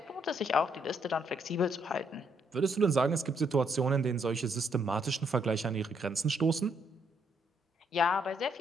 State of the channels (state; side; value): normal; both; correlation 0.73